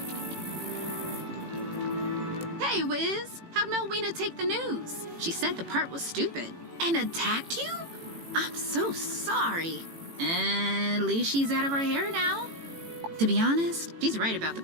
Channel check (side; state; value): left; late; 18 ms